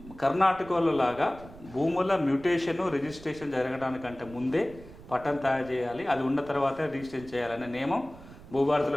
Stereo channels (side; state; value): right; noise; rumble, 18 dB below the sound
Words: కర్ణాటకలో లాగా భూముల మ్యూటేషన్ రిజిస్ట్రేషన్ జరగడానికంటే ముందే పట్టం తయారు చేయాలి, అది ఉన్న తర్వాతే రిజిస్ట్రేషన్ చేయాలనే నియమం